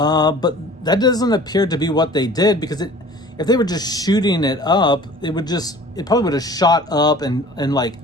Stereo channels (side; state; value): both; normal; correlation 0.46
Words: that doesn't appear to be what they did, because if they were just shooting it up, it probably would have shot up and like